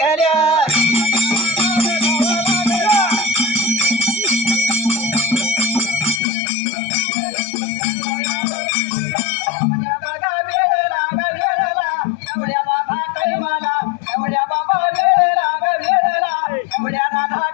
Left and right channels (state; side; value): drops out; right; at 6.2 s